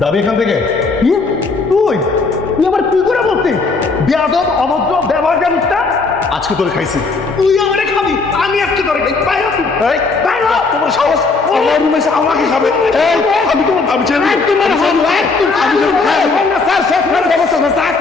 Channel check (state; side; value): quieter; right; 4.1 dB